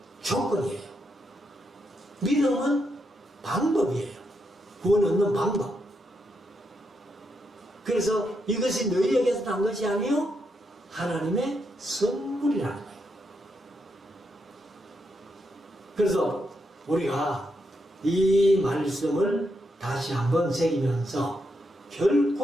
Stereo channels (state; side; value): normal; both; correlation 0.81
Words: 조건이에요. 믿음은 방법이에요. 구원 얻는 방법. 그래서 이것이 너희에게서 난 것이 아니요 하나님의 선물이라는 거예요. 그래서 우리가 이 말씀을 다시 한번 새기면서